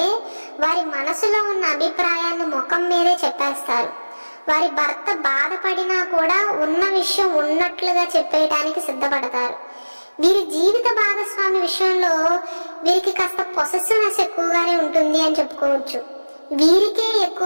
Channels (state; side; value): inverted; both; correlation -1.00